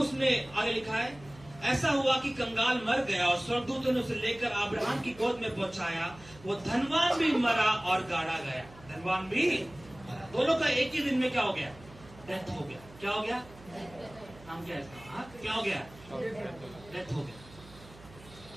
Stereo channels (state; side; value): noise; right; hum, 21 dB below the sound